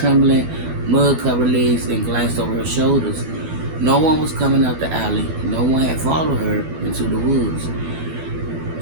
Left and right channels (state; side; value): late; left; 12 ms